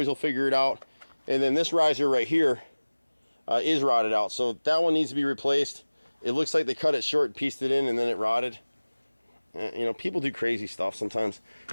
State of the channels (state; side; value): inverted; both; correlation -1.00